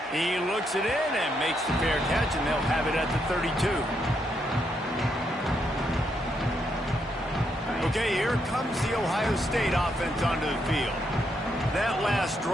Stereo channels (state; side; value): normal; both; correlation 0.78